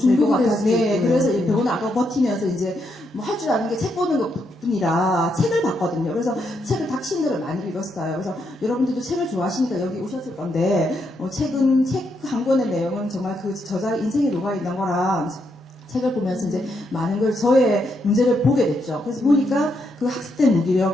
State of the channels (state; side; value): normal; both; correlation 0.79